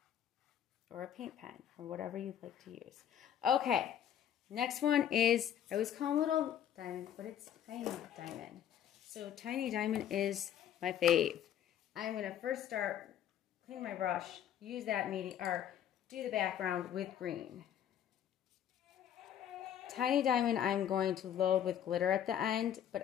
or a paint pen or whatever you'd like to use. Okay, next one is, I always call them little diamond, but it's tiny diamond. So tiny diamond is my fave. I'm going to first start, clean my brush, use that medium, or do the background with green. Tiny diamond I'm going to load with glitter at the end,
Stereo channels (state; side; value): quieter; right; 10.0 dB